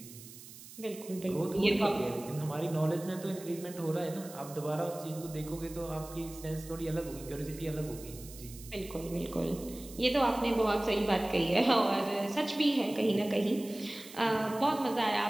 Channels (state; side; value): noise; right; hiss, 16 dB below the sound